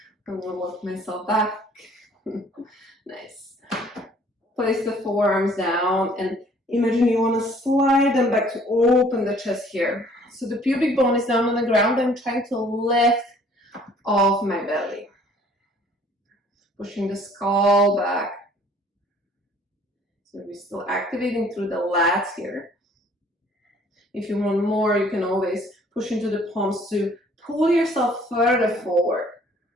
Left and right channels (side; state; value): both; normal; correlation 0.57